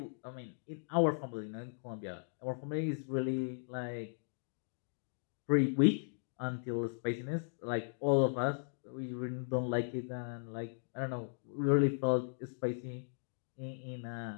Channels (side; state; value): right; silent; digital silence